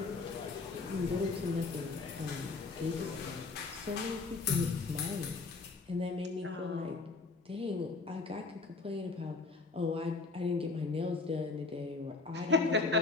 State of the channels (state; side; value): quieter; right; 4.0 dB